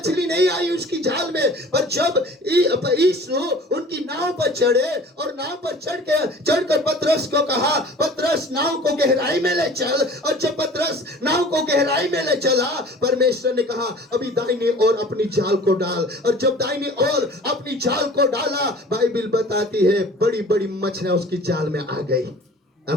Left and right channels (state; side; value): normal; both; correlation 0.45